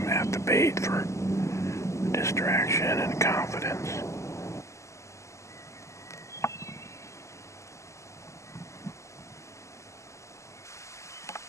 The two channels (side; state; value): right; late; 0.14 ms